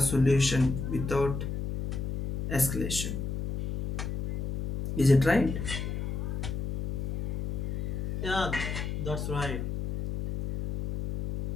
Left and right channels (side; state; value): left; noise; hum, 3 dB below the sound